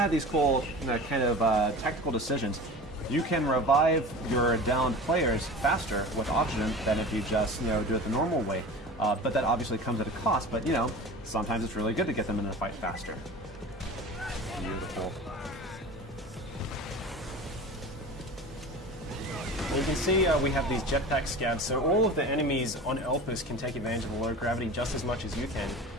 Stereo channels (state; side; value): normal; both; correlation 0.35